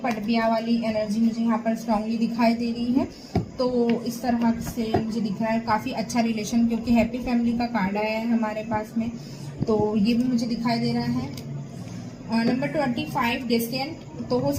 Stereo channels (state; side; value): identical; both; correlation 1.00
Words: वाली एनर्जी मुझे यहाँ पर स्ट्रांगली दिखाई दे रही है। तो इस तरह से मुझे दिख रहा है काफ़ी अच्छा रिलेशन, क्योंकि हैप्पी फैमिली का कार्ड आया है हमारे पास में, तो ये भी मुझे दिखाई दे रहा है। Number 25 distant. तो हो